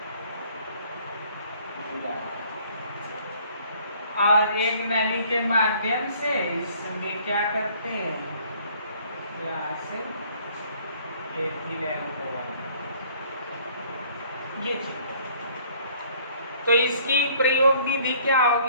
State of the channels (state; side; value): inverted; both; correlation -0.57